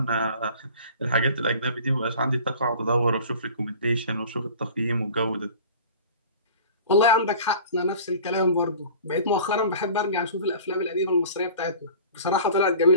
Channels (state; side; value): inverted; both; correlation -0.43